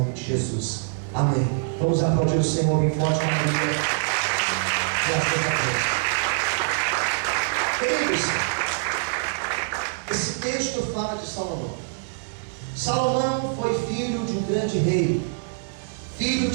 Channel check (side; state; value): left; silent; digital silence